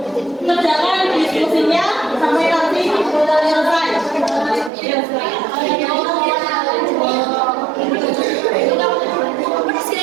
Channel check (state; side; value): drops out; left; at 4.7 s